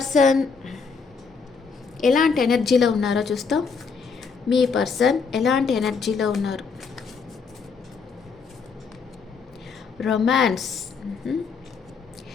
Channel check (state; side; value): quieter; right; 5.3 dB